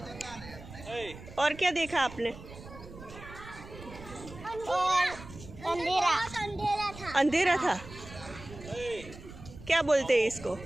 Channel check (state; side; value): noise; right; rumble, 15 dB below the sound